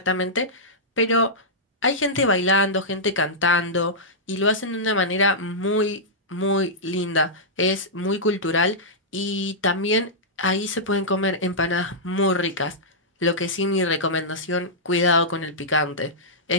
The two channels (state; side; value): normal; both; correlation -0.12